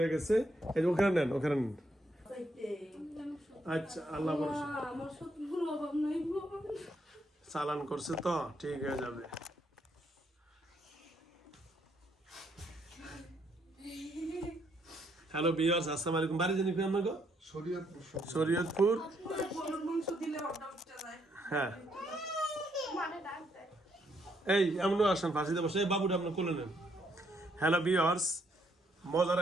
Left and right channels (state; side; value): normal; both; correlation 0.73